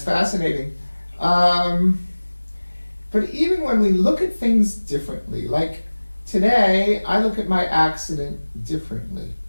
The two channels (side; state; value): both; inverted; correlation -1.00